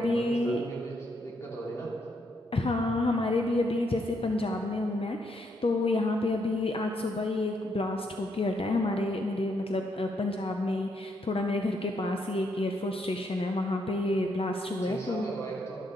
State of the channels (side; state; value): both; normal; correlation 0.75